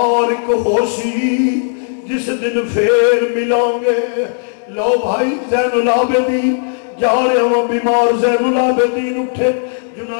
ہو سی جس دن پھر ملیں گے۔ لو بھائی زین العابدین جا رہے ہوں بیمار، زین العابدین اٹھے،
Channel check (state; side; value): silent; right; digital silence